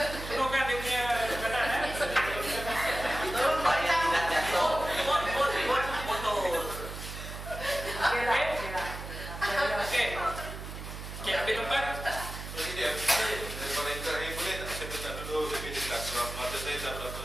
Penuhkan dia punya perkataan. tolong buat dia nak jatuh. Buat motor. Okey. Okey, ambil tempat. Jadi dia daripada yang terakhir boleh tak saya minta dulu lebih jelas sebab mata saya tak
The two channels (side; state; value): right; noise; hum, 9 dB below the sound